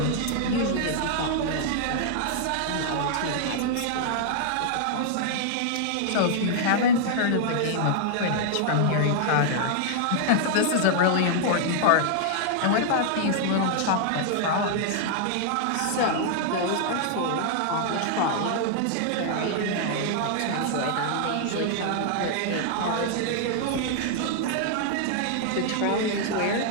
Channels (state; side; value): different; both; correlation -0.01